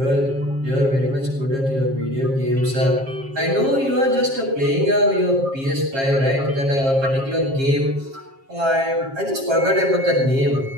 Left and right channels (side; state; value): left; late; 7.4 ms